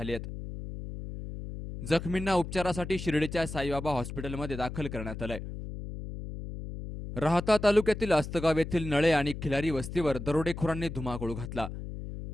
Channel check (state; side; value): noise; left; hum, 8 dB below the sound